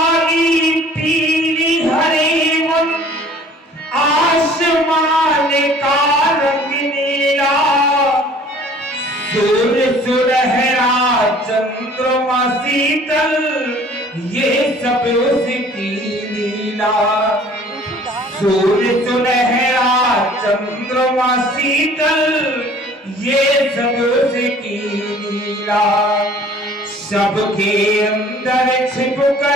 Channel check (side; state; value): both; normal; correlation 0.52